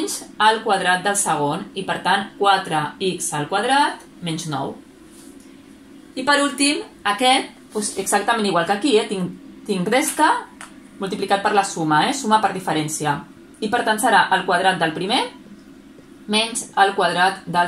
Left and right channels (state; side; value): identical; both; correlation 1.00